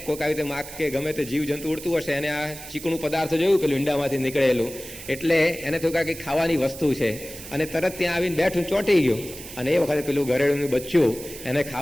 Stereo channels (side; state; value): right; noise; hiss, 13 dB below the sound